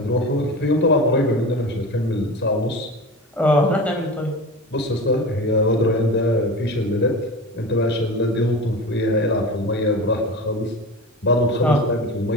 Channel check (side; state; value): both; normal; correlation 0.30